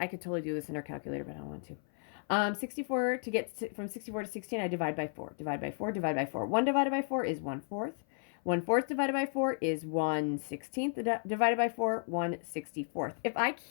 could totally do this in our calculator, but I don't want to. 64, to get from 64 to 16, I divide by 4. Divide by 4, divide by 4. 1 divided by 4 is 1/4. 1/4 divided by 4 is 1/16. Divided by 4, 1/64. If I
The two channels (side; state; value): right; silent; 55 dB below the other